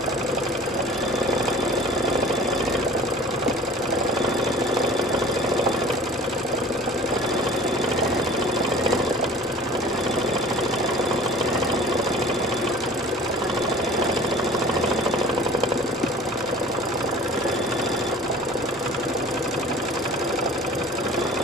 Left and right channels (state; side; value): normal; both; correlation 0.44